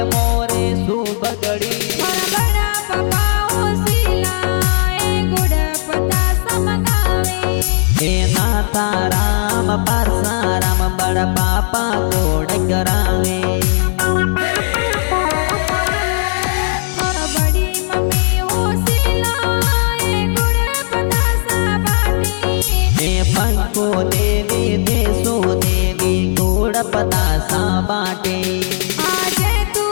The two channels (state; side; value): silent; right; digital silence